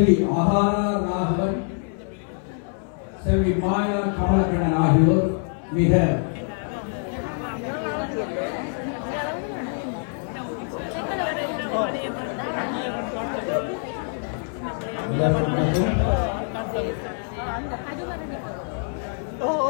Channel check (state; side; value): silent; right; 56 dB below the other